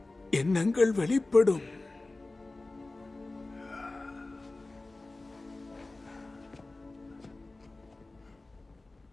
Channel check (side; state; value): right; quieter; 3.1 dB